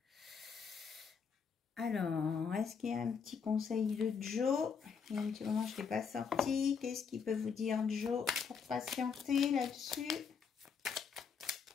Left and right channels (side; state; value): right; quieter; 6.2 dB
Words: Alors, est-ce qu'il y a un petit conseil de Joe? Il y a un petit moment, je ne l'ai pas sorti. Qu'est-ce qu'il peut vous dire, Joe, pour patienter là-dessus?